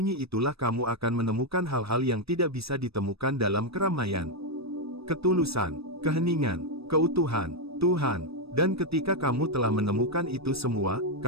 itulah kamu akan menemukan hal-hal yang tidak bisa ditemukan dalam keramaian. Ketulusan, keheningan, keutuhan, Tuhan. Dan ketika kamu telah menemukan itu semua,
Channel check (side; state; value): left; late; 0.78 ms